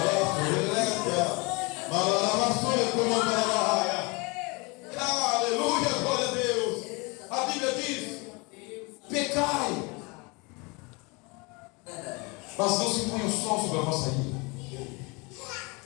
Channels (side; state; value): right; quieter; 28.3 dB